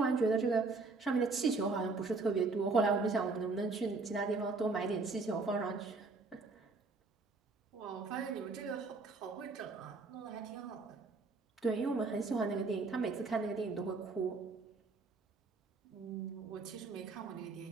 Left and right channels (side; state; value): left; quieter; 4.0 dB